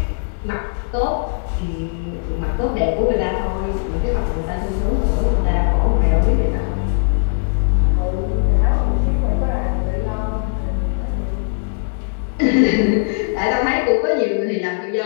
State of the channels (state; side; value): silent; right; 57 dB below the other